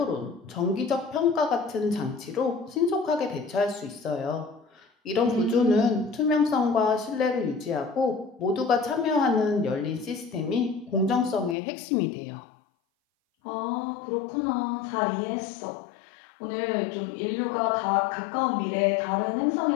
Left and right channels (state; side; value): drops out; right; at 11.6 s